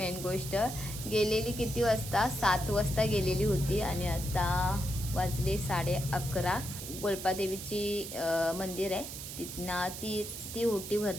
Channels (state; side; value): noise; right; hiss, 9 dB below the sound